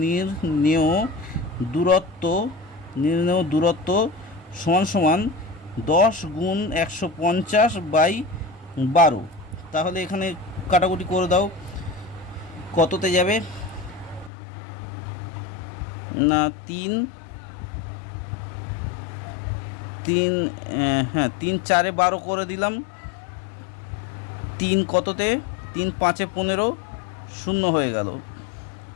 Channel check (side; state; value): right; drops out; at 14.3 s